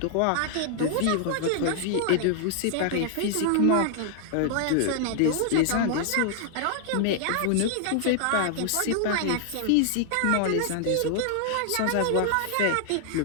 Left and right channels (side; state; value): both; different; correlation 0.00